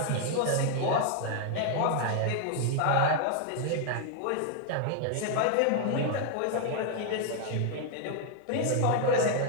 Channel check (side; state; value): both; different; correlation 0.00